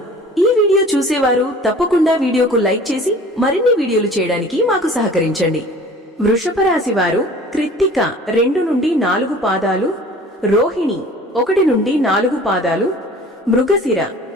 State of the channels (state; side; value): normal; both; correlation 0.46